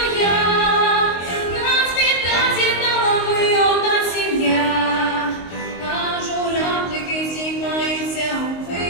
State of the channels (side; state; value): right; late; 22 ms